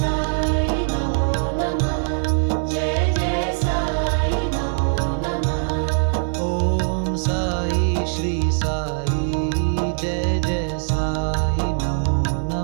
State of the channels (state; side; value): silent; left; digital silence